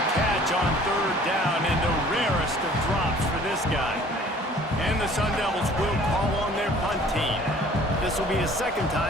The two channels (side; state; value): both; normal; correlation 0.52